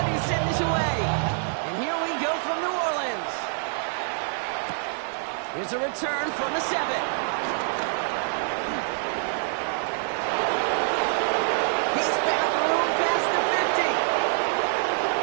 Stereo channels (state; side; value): silent; left; 61 dB below the other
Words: Here's a return from the 7. He's found room past the 50.